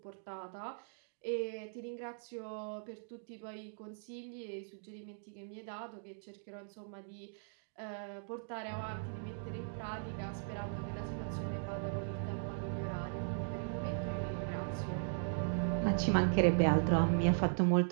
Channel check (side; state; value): left; silent; digital silence